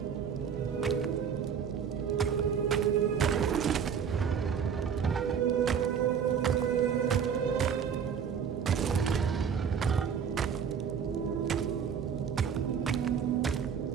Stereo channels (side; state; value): left; quieter; 7.3 dB